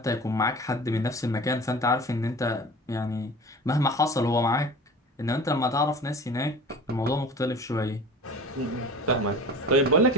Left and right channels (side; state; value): both; normal; correlation 0.39